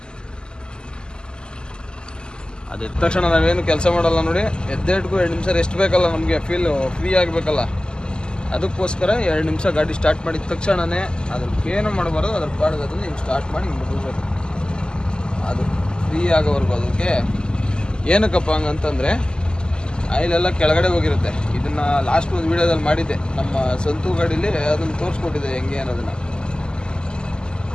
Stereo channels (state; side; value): late; right; 0.047 ms